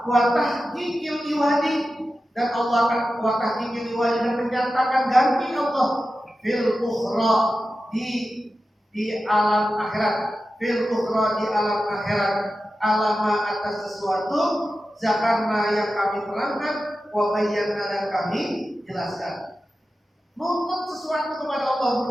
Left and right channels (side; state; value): both; normal; correlation 0.93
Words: tahqiqil iwadi, dan Allah akan wa tahqiqil iwadi, dan menyatakan ganti Allah fil ukhra di alam akhirat, alama atas sesuatu zakarna yang kami terangkan, wa bayyana, dan kami jelaskan. Nuntut sesuatu kepada Allah